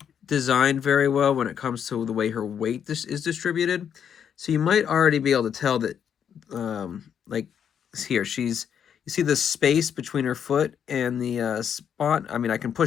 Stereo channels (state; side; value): quieter; right; 8.3 dB